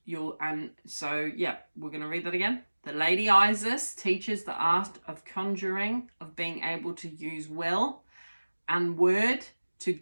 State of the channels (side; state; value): both; inverted; correlation -1.00